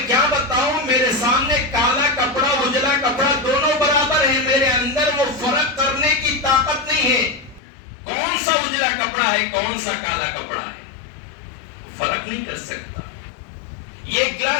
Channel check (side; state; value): right; drops out; at 7.6 s